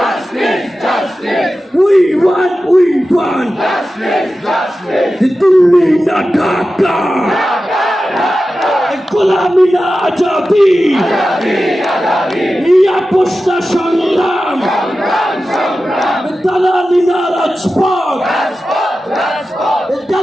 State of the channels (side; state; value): both; normal; correlation 0.93